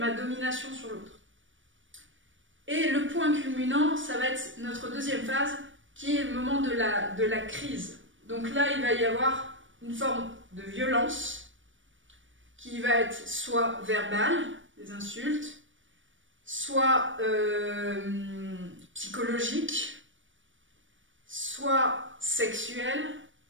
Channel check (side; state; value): left; late; 0.56 ms